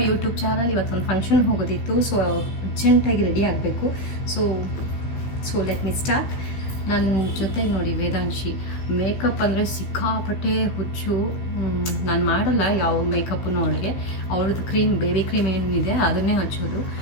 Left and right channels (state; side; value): late; right; 15 ms